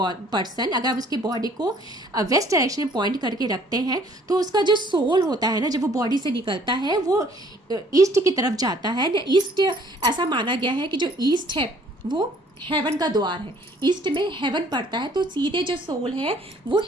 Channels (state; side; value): normal; both; correlation 0.58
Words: person, अगर उसकी बॉडी को वेस्ट डायरेक्शन में पॉइंट करके रखते हैं, तो उसका जो सोल होता है ना, जब वो बॉडी से निकलता है, वो ईस्ट की तरफ जाता है। ईस्ट, ऐसा माना गया है कि जो ईस्ट है वो हेवन का द्वार है, ईस्ट में हेवन पड़ता है, तो सीधे जो सोल है वो